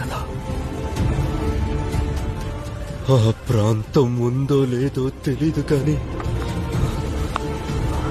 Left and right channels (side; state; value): both; identical; correlation 1.00